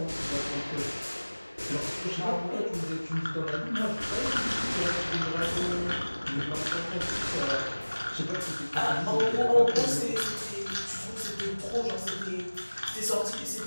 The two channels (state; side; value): inverted; both; correlation -1.00